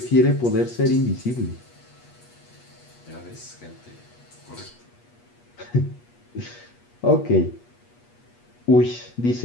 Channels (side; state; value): right; late; 8.3 ms